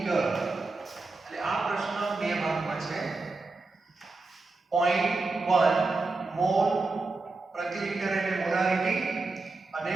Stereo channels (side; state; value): left; quieter; 3.6 dB